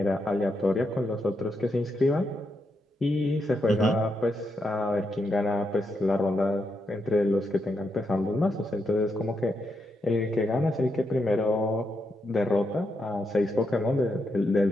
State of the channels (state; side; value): normal; both; correlation 0.82